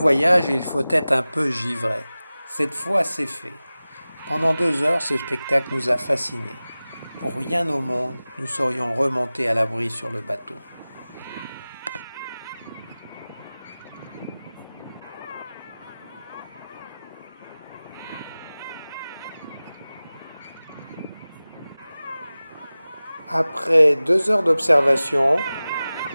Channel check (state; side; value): inverted; both; correlation -0.97